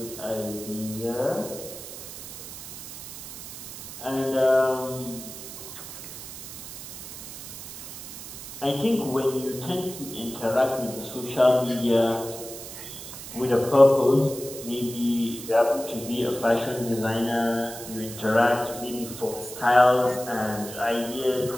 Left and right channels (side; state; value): right; noise; hiss, 11 dB below the sound